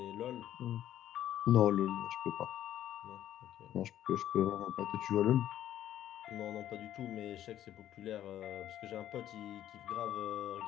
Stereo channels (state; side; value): quieter; right; 11.8 dB